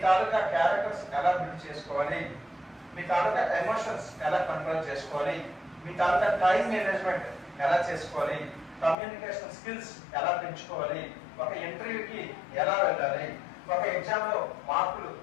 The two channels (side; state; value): right; drops out; at 9.0 s